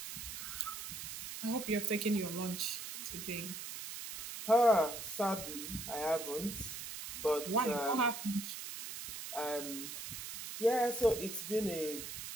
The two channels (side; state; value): right; noise; hiss, 8 dB below the sound